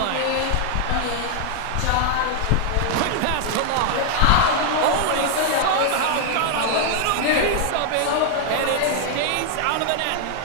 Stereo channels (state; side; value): different; both; correlation 0.00